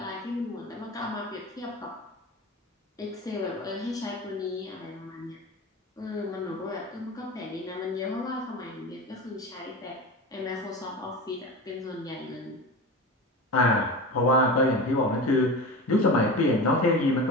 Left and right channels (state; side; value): normal; both; correlation 0.29